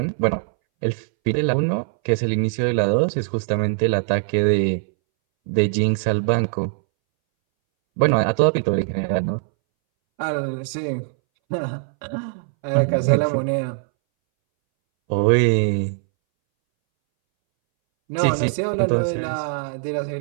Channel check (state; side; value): silent; left; 63 dB below the other